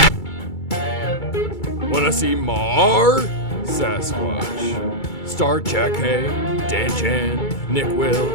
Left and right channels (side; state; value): right; late; 2.3 ms